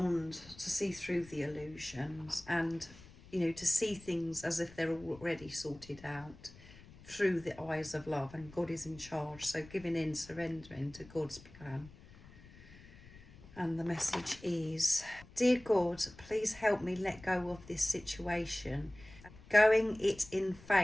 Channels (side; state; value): left; noise; rumble, 20 dB below the sound